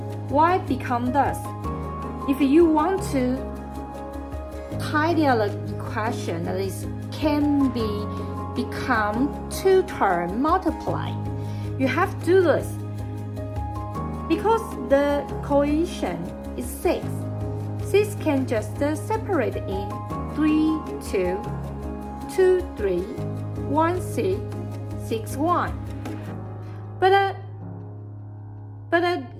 Y become this. If you want to tidy up the equation, that is can become two term multiply. You have to do this because the coefficient is 6. 6 can just separate in 3, 2, 2, 3, 1, 6, 6, 1. But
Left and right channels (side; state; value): both; identical; correlation 1.00